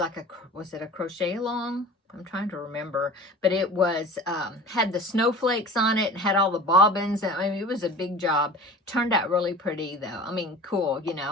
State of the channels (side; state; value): both; normal; correlation 0.39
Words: was it a crochet along? I'm trying to remember, but it was had the snowflakes on it and had all the bobbins. I mean, it was a big job. Turned out really pretty though. I mean, cool,